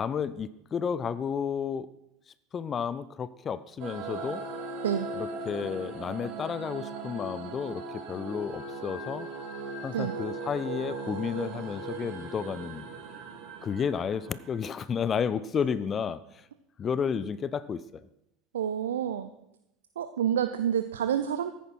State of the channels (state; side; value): normal; both; correlation 0.33